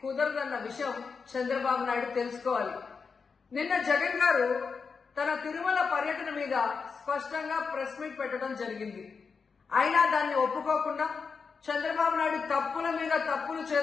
కుదరదన్న విషయం చంద్రబాబు నాయుడు తెలుసుకోవాలి. నిన్న జగన్ గారు తన తిరుమల పర్యటన మీద స్పష్టంగా ప్రెస్ మీట్ పెట్టడం జరిగింది. అయినా దాన్ని ఒప్పుకోకుండా చంద్రబాబు నాయుడు తప్పుల మీద తప్పులు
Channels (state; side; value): quieter; right; 5.3 dB